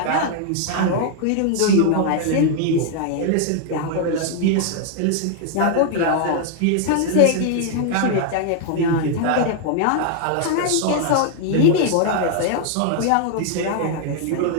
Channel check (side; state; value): both; different; correlation 0.00